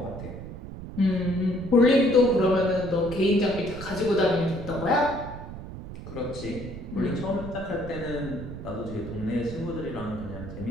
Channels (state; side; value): noise; right; rumble, 11 dB below the sound